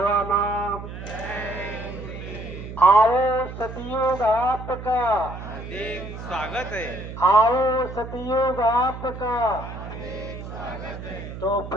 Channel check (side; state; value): right; noise; hum, 10 dB below the sound